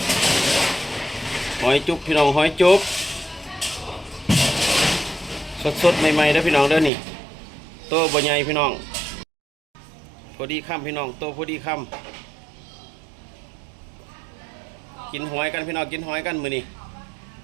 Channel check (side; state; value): left; drops out; at 6.9 s